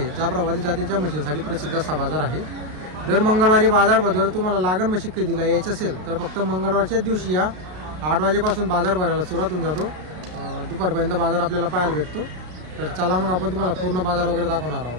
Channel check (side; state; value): left; late; 33 ms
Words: जाफराबादी जातीच्या म्हशींसाठी प्रसिद्ध असा बाजार आहे। दर मंगळवारी बाजार बदल तुम्हाला लागण म्हशी खरेदीला यायचं असेल तर फक्त मंगळवारच्याच दिवशी या। 8 वाजेपासून बाजार भरायला सुरुवात होऊन जातो, दुपारपर्यंत बाजार आपल्याला पाहायला भेटतो। तर चला मग आपण तुम्हाला पूर्ण बाजार वगैरे दाखवणार